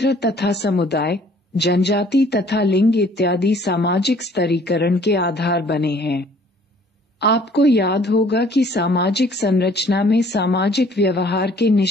तथा समुदाय, जनजाति तथा लिंग इत्यादि सामाजिक स्तरीकरण के आधार बने हैं। आपको याद होगा कि सामाजिक संरचना में सामाजिक व्यवहार के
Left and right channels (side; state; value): both; normal; correlation 0.57